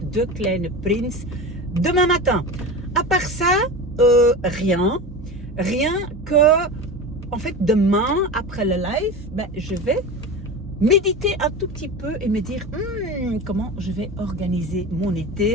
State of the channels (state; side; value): normal; both; correlation 0.28